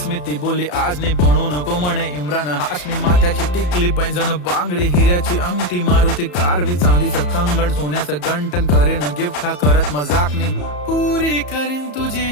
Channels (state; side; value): late; right; 34 ms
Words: मी. ती बोलली आज नाही बनू नको म्हणे इम्रान हाशमी. माथ्याची टिकली पैंजण बांगडी हिऱ्याची अंगठी, मारुती कारवी चांदीचं कंगण सोन्याचं गंटन. करीन गिफ्ट हा करत मजाकनी, पुरी करीन तुझी